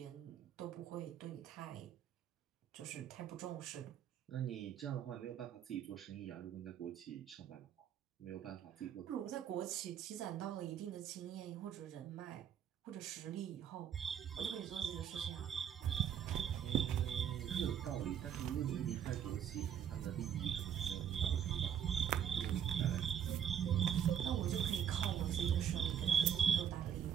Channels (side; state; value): left; quieter; 9.0 dB